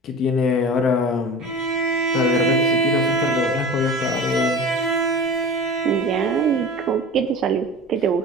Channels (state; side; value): normal; both; correlation 0.35